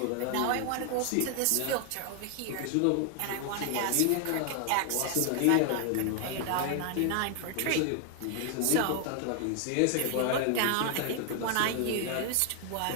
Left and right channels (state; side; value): different; both; correlation 0.00